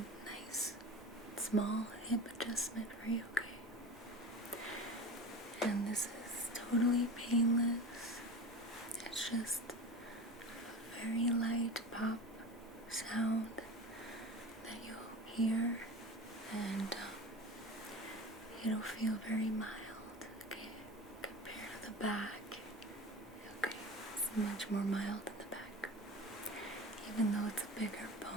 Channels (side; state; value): both; normal; correlation 0.32